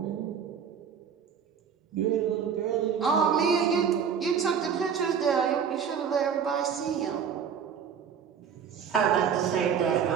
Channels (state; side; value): quieter; left; 7.3 dB